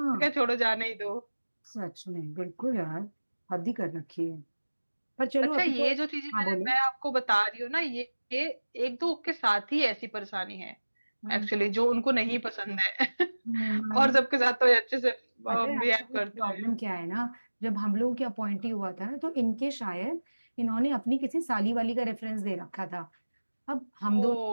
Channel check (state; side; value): inverted; both; correlation -1.00